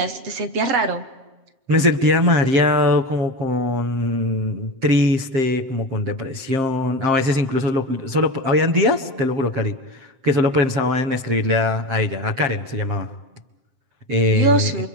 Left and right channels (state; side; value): late; left; 7.5 ms